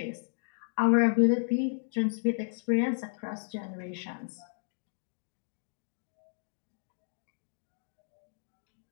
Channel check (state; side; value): silent; right; digital silence